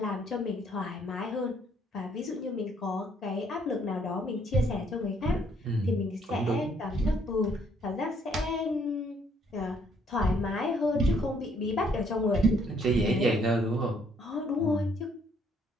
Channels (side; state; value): both; normal; correlation 0.67